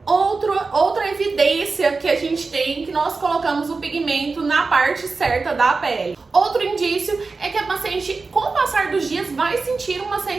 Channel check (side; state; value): left; quieter; 4.1 dB